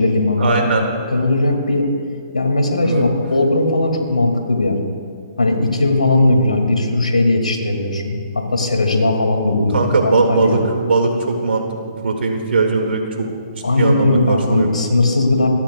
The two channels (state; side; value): inverted; both; correlation -0.75